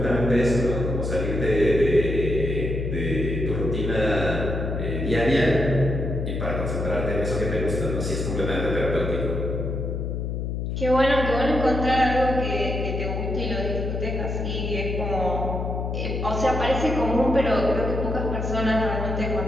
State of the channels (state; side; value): noise; left; hum, 3 dB below the sound